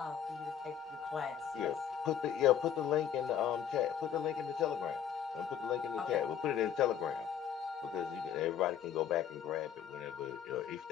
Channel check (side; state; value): right; quieter; 8.9 dB